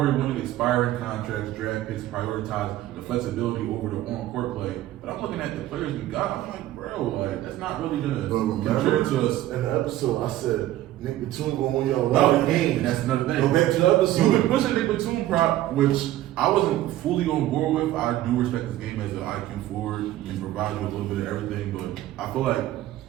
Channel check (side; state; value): left; quieter; 14.4 dB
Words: wanting expiring contracts, draft picks, prioritize the flexibility over the on-court play. But I'm looking at the players we got, I'm like, bro, like that's not really gonna contribute to us. In the episode, I said Nick Batum gonna win y'all a lot of games. That's another thing. Go back to the episode. You've been pushing Nick Batum prop, which I wasn't fully on board with. I do respect this game as an IQ forward and provide you a little bit of everything, but I feel like